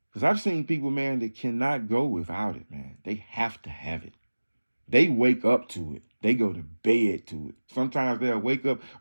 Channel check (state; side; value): inverted; both; correlation -1.00